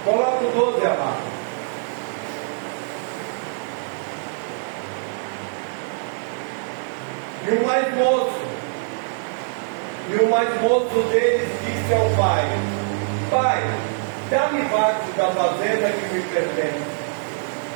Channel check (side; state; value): left; silent; digital silence